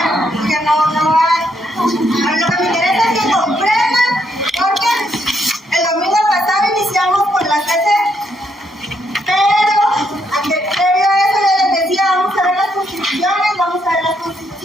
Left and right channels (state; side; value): normal; both; correlation 0.75